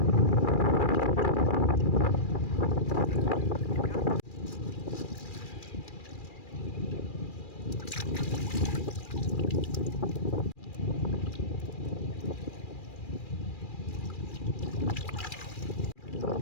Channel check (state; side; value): late; right; 2.4 ms